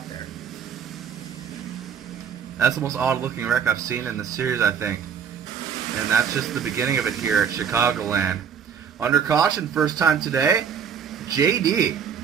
there. That's the most odd-looking wreck I've seen in the series, I think. And that's just the beginning of it here at Chicagoland. Under caution, first time today, JD,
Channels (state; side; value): quieter; left; 7.5 dB